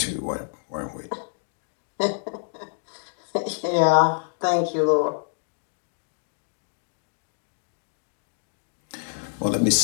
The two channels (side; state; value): right; silent; digital silence